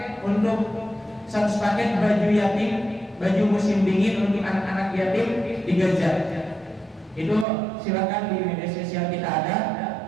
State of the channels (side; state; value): left; drops out; at 7.5 s